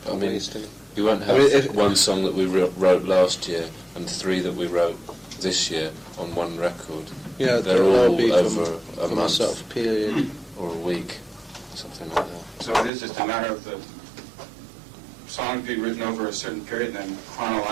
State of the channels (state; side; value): drops out; left; at 12.9 s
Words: I mean, we won't have one song that we wrote last year and 3 that we wrote this year on one record. Yeah, they're all be over a from month a sort of period or a week, something like that. So it is just a matter of the songs being written over a certain period, and then